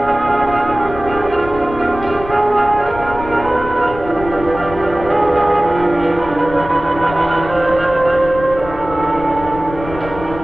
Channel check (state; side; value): noise; left; rumble, 12 dB below the sound